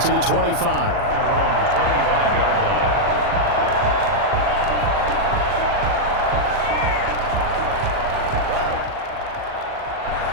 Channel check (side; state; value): left; late; 40 ms